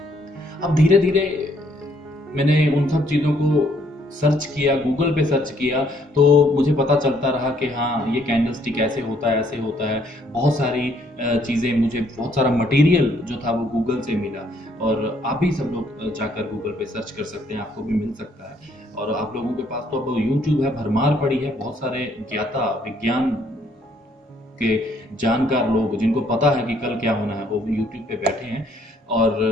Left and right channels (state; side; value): normal; both; correlation 0.67